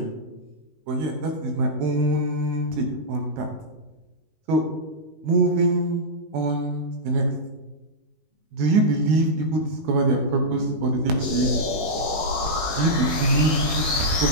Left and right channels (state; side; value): late; left; 19 ms